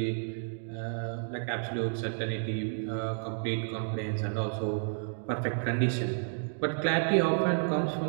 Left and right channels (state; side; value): silent; left; digital silence